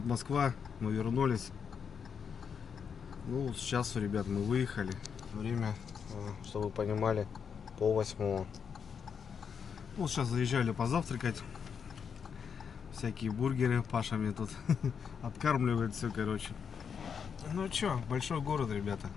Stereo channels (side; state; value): right; quieter; 6.8 dB